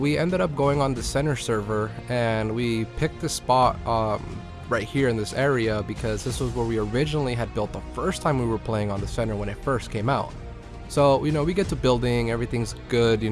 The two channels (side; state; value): both; identical; correlation 1.00